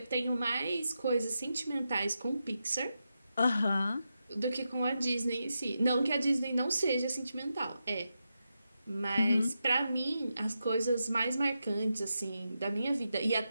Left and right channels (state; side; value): inverted; both; correlation -0.88